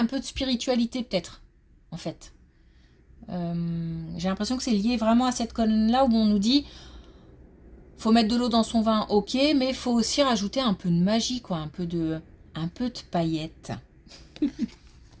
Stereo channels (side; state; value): both; identical; correlation 1.00